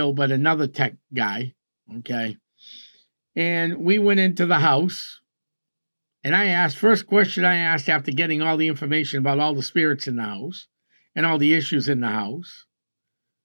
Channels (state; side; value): inverted; both; correlation -1.00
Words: but another tech guy. Okay. And we went into the house. And first question I asked after getting all the information about all the spirits in the house and all the issues in the house